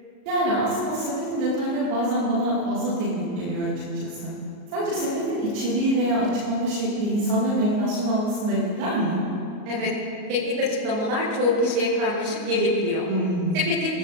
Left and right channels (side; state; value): left; late; 38 ms